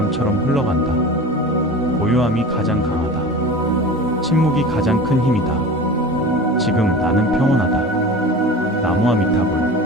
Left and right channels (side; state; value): both; normal; correlation 0.34